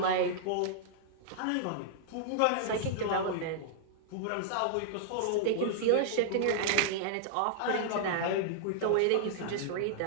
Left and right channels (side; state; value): both; different; correlation -0.01